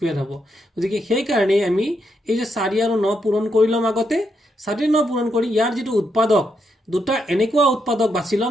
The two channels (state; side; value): normal; both; correlation 0.80